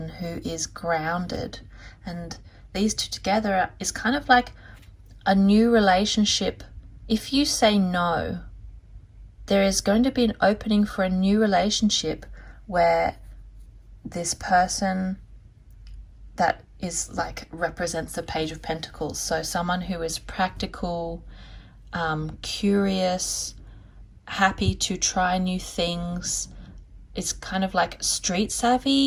who is grounded. And these two together is kind of like a new relationship. If you say no, there is going to be an opening for a new relationship where this person that is like represents the Page of Pentacles. So someone who is practical, curious, happy to try new things, is kind of like street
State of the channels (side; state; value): both; identical; correlation 1.00